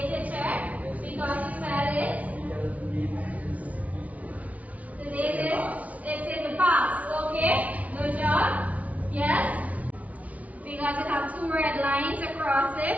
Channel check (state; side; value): late; left; 0.070 ms